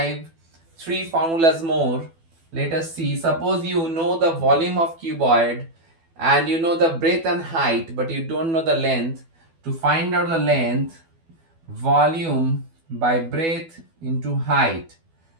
three formulas more. Let us see. Suppose you know the volume of cuboid and you know the breadth and height, but you don't know the length. To find out the length, volume by breadth into height.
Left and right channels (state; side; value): late; left; 12 ms